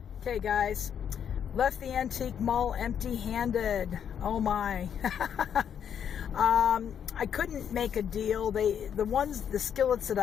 Okay, guys. Left the antique mall empty-handed. Oh my. I couldn't make a deal. The skillets that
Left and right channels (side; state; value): right; quieter; 8.4 dB